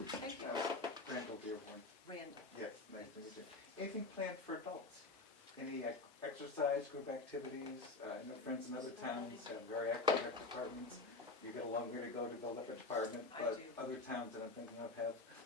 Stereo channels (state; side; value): quieter; right; 3.5 dB